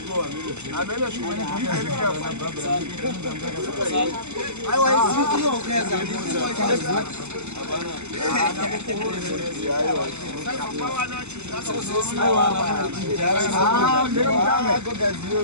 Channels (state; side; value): late; left; 0.82 ms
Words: go amene shimwe aiwa iziki yokeza